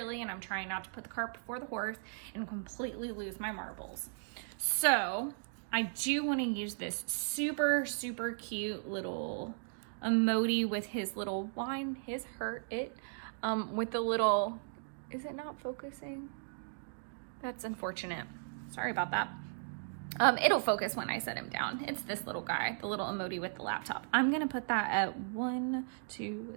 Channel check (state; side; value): silent; left; digital silence